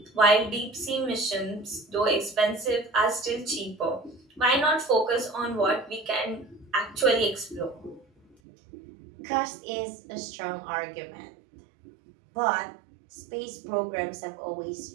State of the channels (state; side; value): drops out; left; at 8.3 s